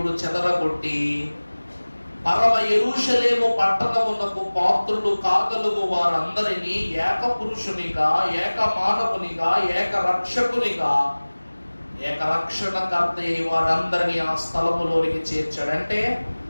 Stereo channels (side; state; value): both; inverted; correlation -1.00